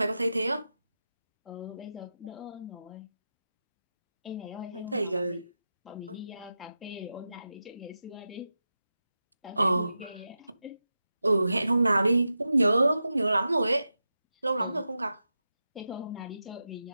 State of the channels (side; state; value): both; inverted; correlation -0.91